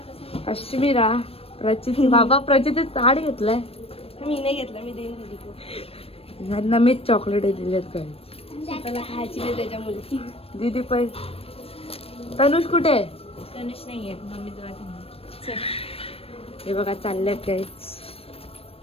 अश्मिरा प्रचिती बाबा प्रचिती ताड घेतलाय. मी नाही घेतला, मी देईन दीदी. ह्यांना मीच चॉकलेट दिलेत काय त्याला खायची नाही त्याच्यामुळे. दीदी पण. तनुष कुठे आहे? तनुष नाही येत, मम्मी तुला घेऊन. हे बघा चाललेत काय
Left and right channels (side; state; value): right; late; 0.28 ms